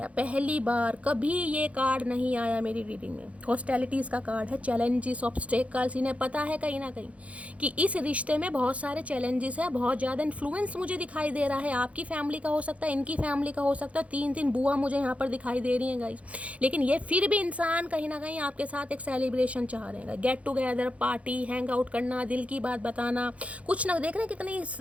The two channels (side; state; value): left; late; 0.064 ms